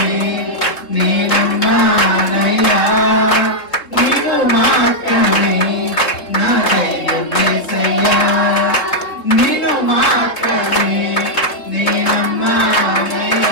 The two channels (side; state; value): right; late; 3.7 ms